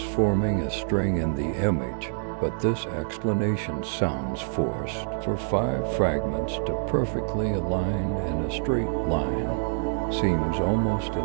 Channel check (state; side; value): silent; left; digital silence